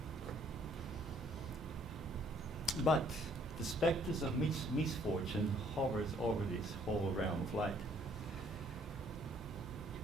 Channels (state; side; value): normal; both; correlation 0.63